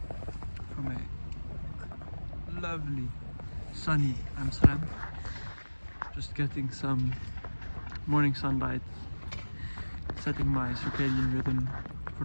from a lovely sunny Amsterdam. Just getting some morning sunlight, setting my circadian rhythm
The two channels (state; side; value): inverted; both; correlation -1.00